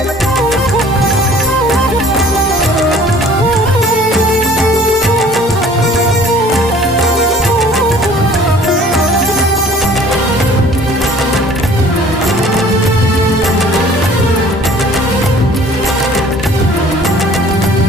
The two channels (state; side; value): normal; both; correlation 0.52